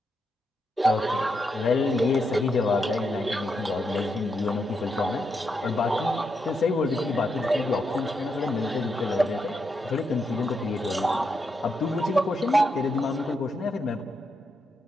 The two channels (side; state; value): both; normal; correlation 0.82